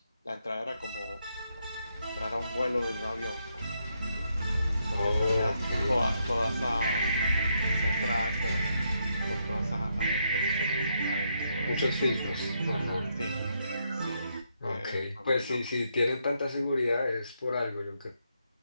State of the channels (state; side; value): inverted; both; correlation -0.78